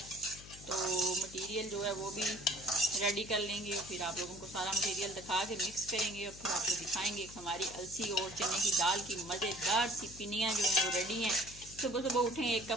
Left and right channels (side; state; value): left; noise; hum, 17 dB below the sound